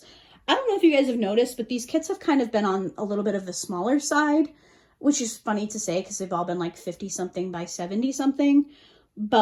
I don't know if you guys have noticed, but these kits have kind of been on a little bit of the smaller side, which is funny to say because they've all been like 50 something by 70 something,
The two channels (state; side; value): identical; both; correlation 1.00